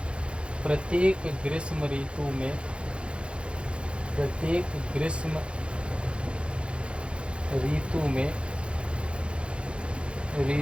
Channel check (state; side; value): late; left; 0.057 ms